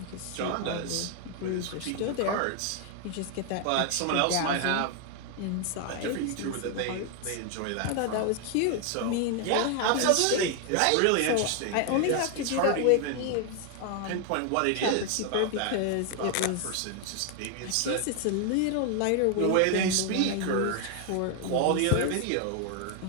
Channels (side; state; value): both; different; correlation 0.00